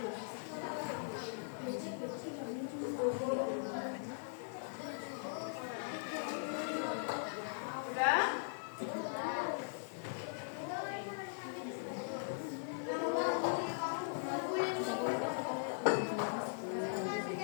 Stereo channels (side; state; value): right; silent; 51 dB below the other